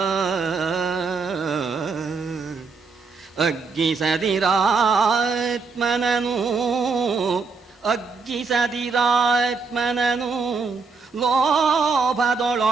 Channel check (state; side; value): quieter; left; 4.7 dB